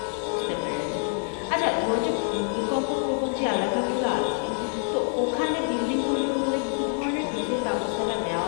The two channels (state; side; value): silent; right; 61 dB below the other